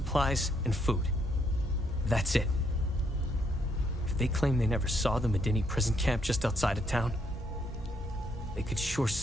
and food. That's it. If they claim they never saw the Medini prison camp just outside of town, they could sure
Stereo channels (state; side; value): normal; both; correlation 0.73